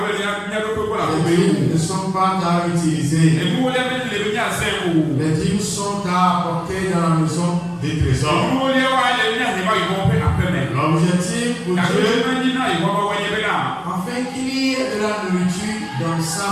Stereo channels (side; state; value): both; identical; correlation 1.00